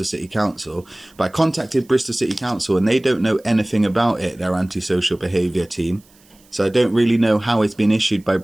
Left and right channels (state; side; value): noise; right; hiss, 30 dB below the sound